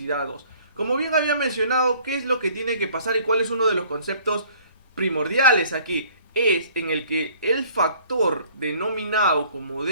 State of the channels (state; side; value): inverted; both; correlation -0.55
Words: 2. Como bien había mencionado, ¿qué es lo que tiene que pasar y cuál es uno de los conceptos primordiales aquí? Es en el que el factor denominado como